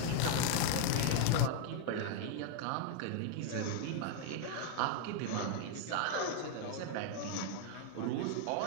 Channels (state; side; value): different; both; correlation 0.00